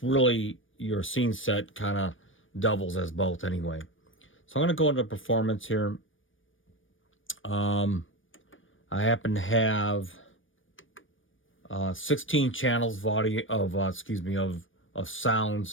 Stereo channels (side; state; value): right; late; 0.57 ms